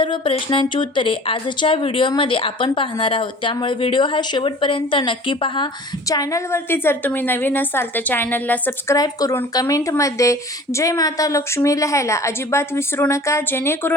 प्रश्नांची उत्तरे आजच्या व्हिडिओमध्ये आपण पाहणार आहोत. त्यामुळे व्हिडिओ हा शेवटपर्यंत नक्की पहा. चॅनलवरती जर तुम्ही नवीन असाल तर चॅनलला सबस्क्राईब करून कमेंटमध्ये जय माता लक्ष्मी लिहायला अजिबात विसरू नका,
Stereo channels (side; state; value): both; normal; correlation 0.45